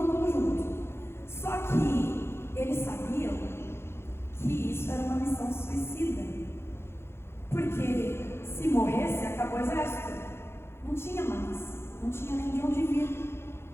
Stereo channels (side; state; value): right; late; 0.12 ms